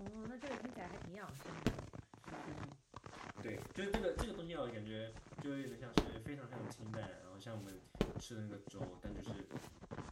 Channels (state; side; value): identical; both; correlation 1.00